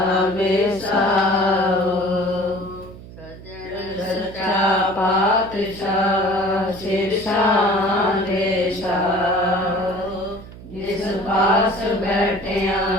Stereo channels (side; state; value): right; noise; hum, 16 dB below the sound